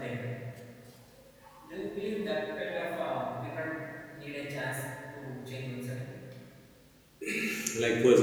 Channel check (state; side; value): identical; both; correlation 1.00